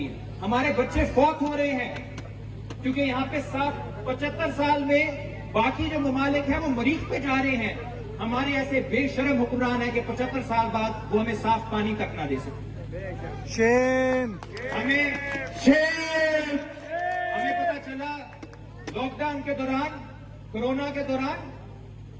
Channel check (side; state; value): both; identical; correlation 1.00